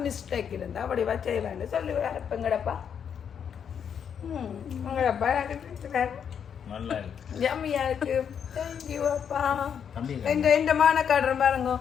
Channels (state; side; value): quieter; right; 7.8 dB